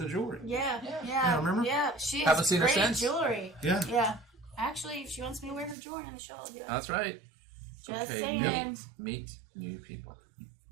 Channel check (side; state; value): left; drops out; at 5.8 s